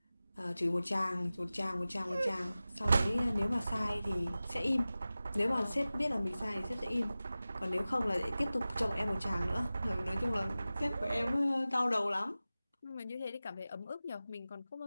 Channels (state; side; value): inverted; both; correlation -0.96